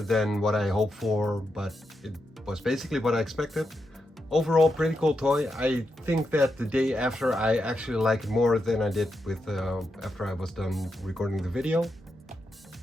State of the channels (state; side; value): normal; both; correlation 0.85